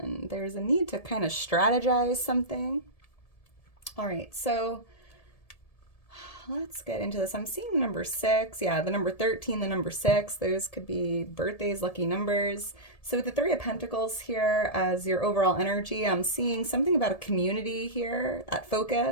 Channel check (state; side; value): late; right; 1.7 ms